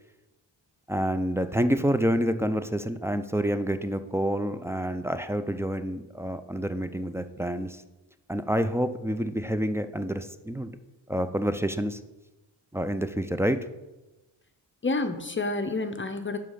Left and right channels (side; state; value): both; normal; correlation 0.79